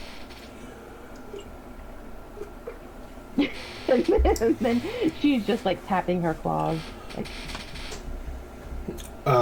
And then she's just like tapping her claws. Like,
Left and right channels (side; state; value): both; identical; correlation 1.00